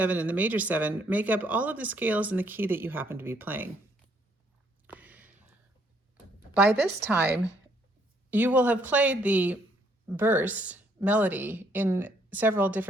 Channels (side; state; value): both; normal; correlation 0.68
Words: and the major 7, make up all of the scales in the key that you happen to be playing. By this time, you will have played the verse melody in several